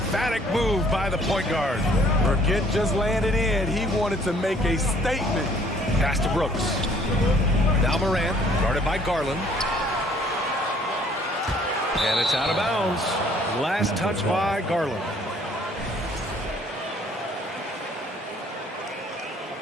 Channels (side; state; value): both; normal; correlation 0.60